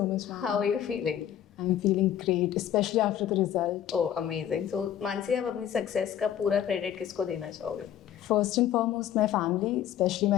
much, ma'am. How are you feeling? I'm feeling great, especially after the result. Oh, amazing. So, Mansi, आप अपनी success का पूरा credit किसको देना चाहोगे? First and foremost, my family, especially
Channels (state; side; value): quieter; right; 10.4 dB